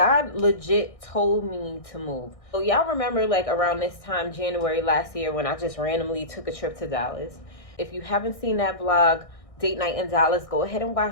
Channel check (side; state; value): right; late; 1.6 ms